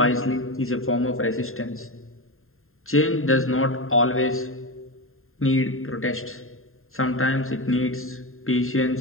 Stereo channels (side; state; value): right; late; 0.61 ms